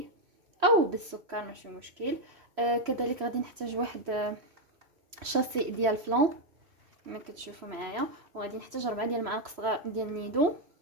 او بالسكر ماشي مشكل. كذلك غادي نحتاج واحد شاسي ديال فلان كما كتشوفوا معايا، وغادي نحتاج 4 ديال المعالق صغار ديال نيدو،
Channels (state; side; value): late; left; 3.0 ms